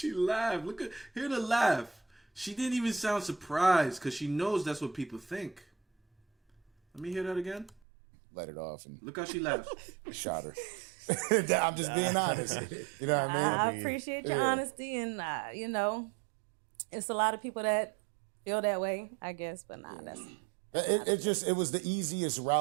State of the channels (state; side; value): drops out; left; at 7.8 s